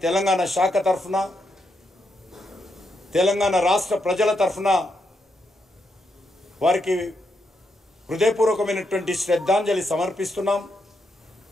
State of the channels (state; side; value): normal; both; correlation 0.81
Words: తెలంగాణ శాఖ తరఫున తెలంగాణ రాష్ట్ర ప్రజల తరఫున వారికి హృదయపూర్వకమైనటువంటి శ్రద్ధాంజలి సమర్పిస్తున్నాం।